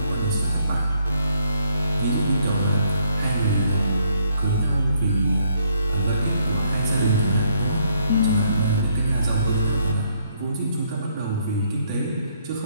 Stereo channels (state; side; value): inverted; both; correlation -0.70